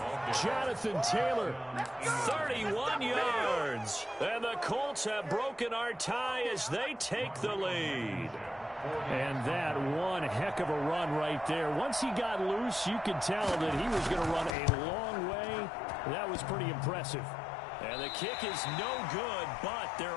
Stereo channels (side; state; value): right; drops out; at 14.6 s